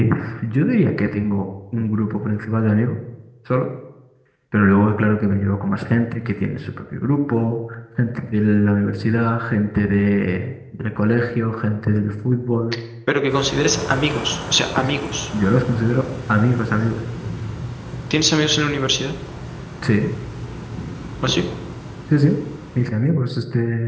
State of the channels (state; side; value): identical; both; correlation 1.00